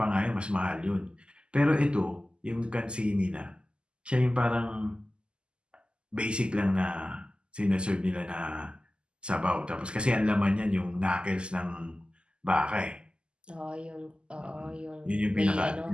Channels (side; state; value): left; late; 0.050 ms